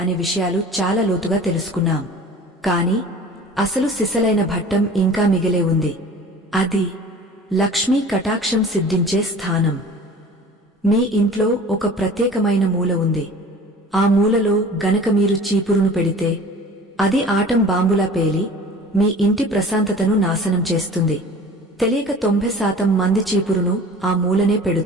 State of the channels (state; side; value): normal; both; correlation 0.43